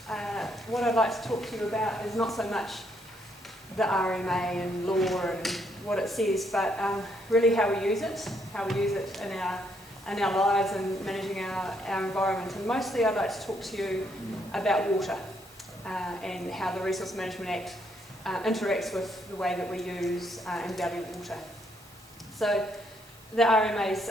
what I'd like to talk to you about is not so much the RMA and law and what it says, but really how we use it in our lives and managing our environment. And mostly I'd like to talk to you about water and how the Resource Management Act interacts with the way that we use and value water. So the RMA's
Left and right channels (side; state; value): both; normal; correlation 0.72